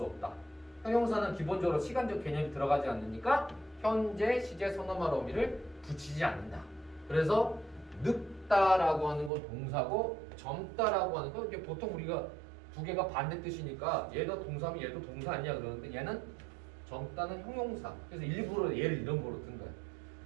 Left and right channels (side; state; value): left; drops out; at 9.3 s